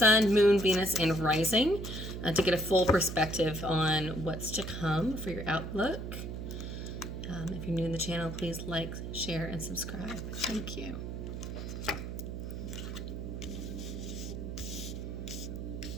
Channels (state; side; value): noise; right; hum, 6 dB below the sound